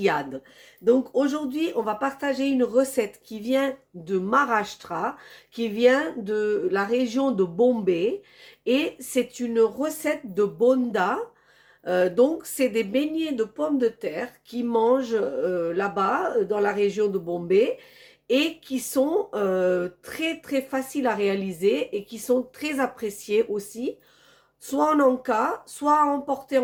Donc aujourd'hui, on va partager une recette qui vient de Maharashtra, qui vient de la région de Bombay et c'est une recette de bonda. Donc, c'est des beignets de pommes de terre qui mangent là-bas, dans la région de Bombay, et qui sont très très faciles à réaliser et qui sont très appréciés aussi, soit en encas, soit à emporter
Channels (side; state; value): both; identical; correlation 1.00